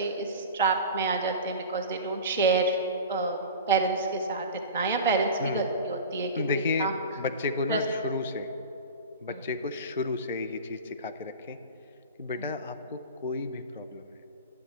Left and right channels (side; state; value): both; inverted; correlation -0.32